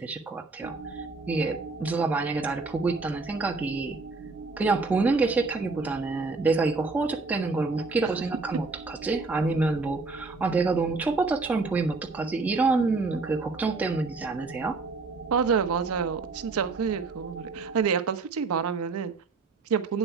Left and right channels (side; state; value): left; quieter; 3.9 dB